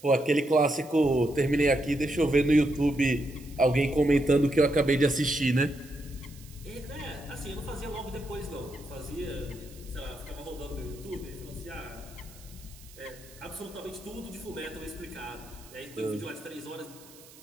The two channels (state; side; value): noise; right; hiss, 22 dB below the sound